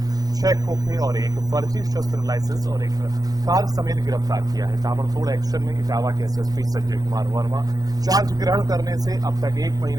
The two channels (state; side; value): late; left; 0.18 ms